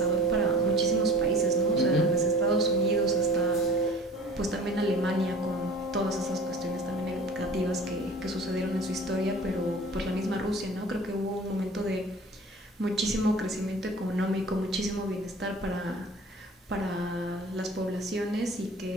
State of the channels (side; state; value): both; normal; correlation 0.42